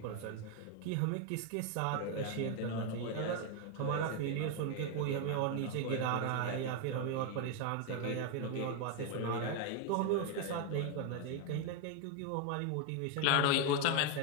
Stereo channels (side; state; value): both; different; correlation 0.01